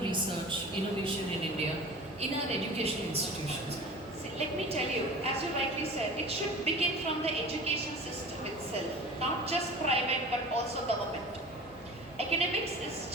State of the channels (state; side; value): normal; both; correlation 0.38